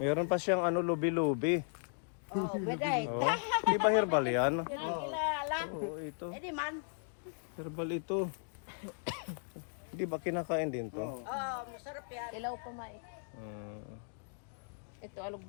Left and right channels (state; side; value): silent; right; digital silence